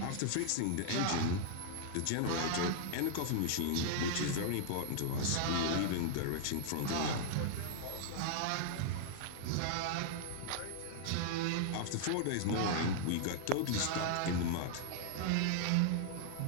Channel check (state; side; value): different; both; correlation -0.01